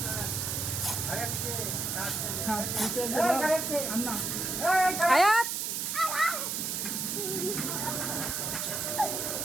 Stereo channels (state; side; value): noise; right; hiss, 2 dB below the sound